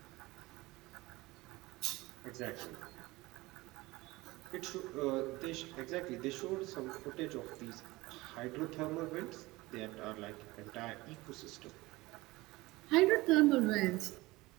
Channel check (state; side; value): quieter; left; 20.7 dB